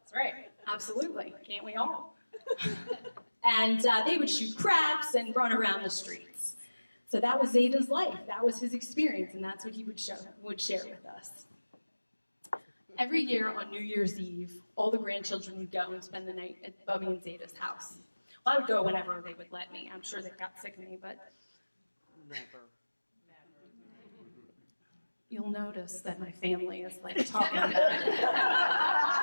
right, absolutely. Can't we all? And they would shoot craps and run around the streets. So that was Zeta's life. That was his experience, and that's what he would share with us. Every year on New Year's Eve, all the grandchildren would go and spend the night at Bubby and Zeta's house. Well, I would go whenever they would let me. I'm sure they got sick of me, but... Never. You'll notice that my family is like talking about it.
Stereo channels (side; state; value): both; inverted; correlation -1.00